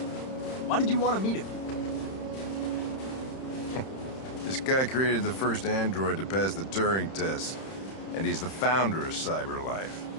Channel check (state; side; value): late; right; 31 ms